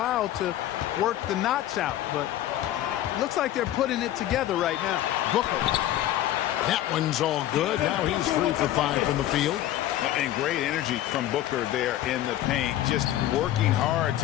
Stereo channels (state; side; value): quieter; right; 13.2 dB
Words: to work the knots out, but it looks like they're putting it together right now. Booker. That one's all good. Now he's 3 for 5 from the field. And great energy from Booker there in the paint, just working hard